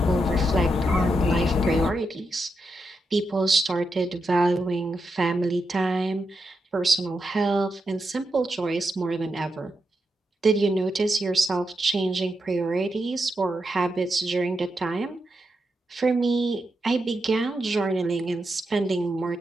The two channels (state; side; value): normal; both; correlation 0.85